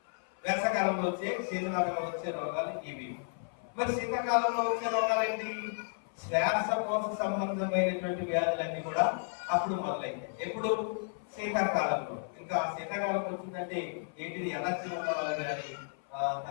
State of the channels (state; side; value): silent; right; 56 dB below the other